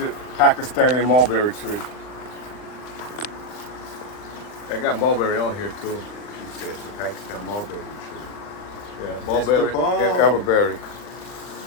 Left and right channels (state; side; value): late; right; 39 ms